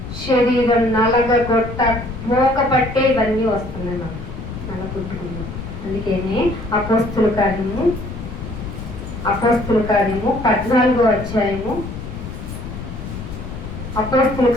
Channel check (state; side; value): noise; left; rumble, 9 dB below the sound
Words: శరీరం నలగొట్ట మోక పట్టే ఇవన్నీ వస్తున్నాయి నాకు నలగొట్టుకున్నాం. అందుకనే అపోస్తుల కార్యము 14వ అధ్యాయము, అపోస్తుల